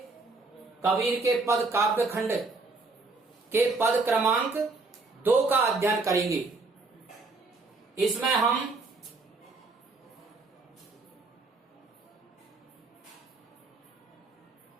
कबीर के पद काव्य खंड के पद क्रमांक 2 का अध्ययन करेंगे। इसमें हम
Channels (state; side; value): quieter; left; 3.7 dB